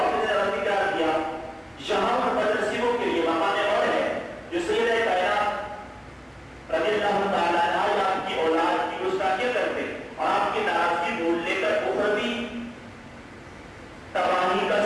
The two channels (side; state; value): both; identical; correlation 1.00